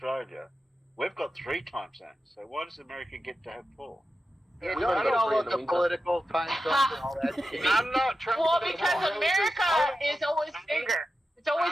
we've got 3 time zones. So why does America get to have 4? Yeah, We don't only get got all 3 of in the the winter. political time zones and all that shit. I'm not trying Well, to because turn America Rose's- is always bigger. It's always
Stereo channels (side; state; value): both; normal; correlation 0.91